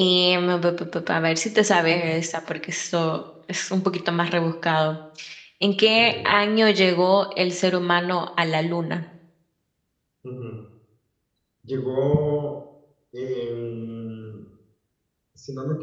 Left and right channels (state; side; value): identical; both; correlation 1.00